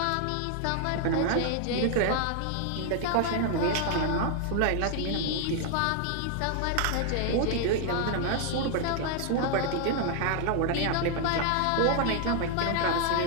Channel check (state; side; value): different; both; correlation 0.00